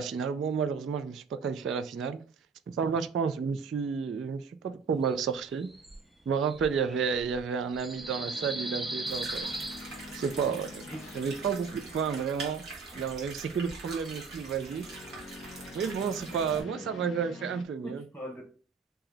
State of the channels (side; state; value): left; quieter; 5.4 dB